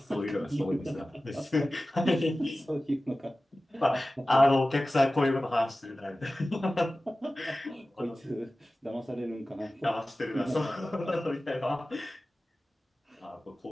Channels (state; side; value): normal; both; correlation 0.96